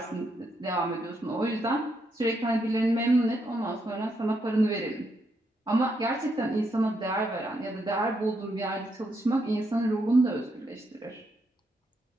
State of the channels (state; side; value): normal; both; correlation 0.79